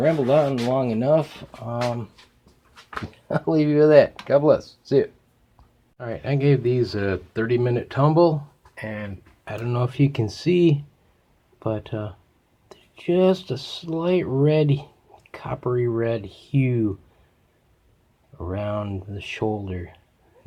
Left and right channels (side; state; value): both; identical; correlation 1.00